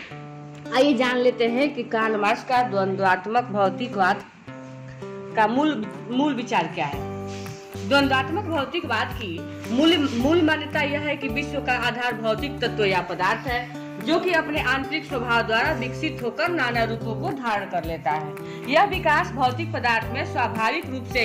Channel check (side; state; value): both; identical; correlation 1.00